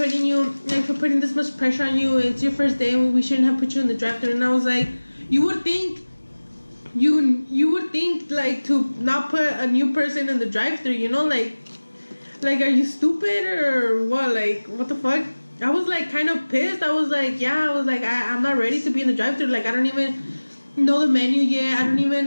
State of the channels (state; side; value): inverted; both; correlation -1.00